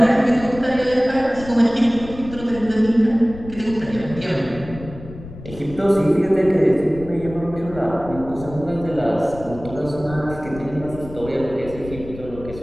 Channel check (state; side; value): noise; left; rumble, 14 dB below the sound